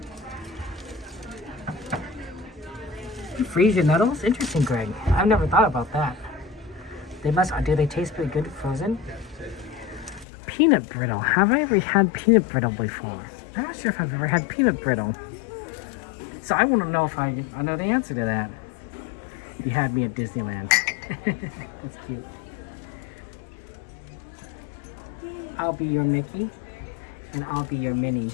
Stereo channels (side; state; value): right; drops out; at 10.2 s